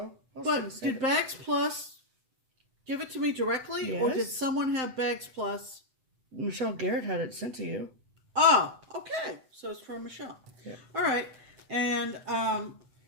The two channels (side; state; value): left; late; 7.7 ms